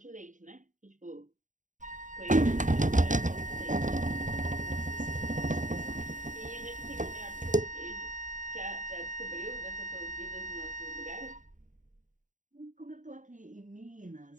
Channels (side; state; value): left; late; 0.37 ms